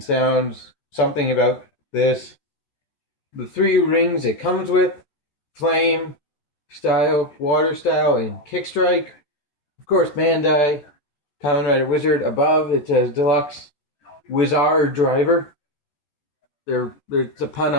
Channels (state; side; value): late; right; 14 ms